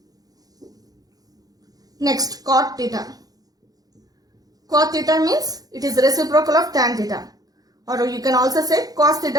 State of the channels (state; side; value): late; left; 0.18 ms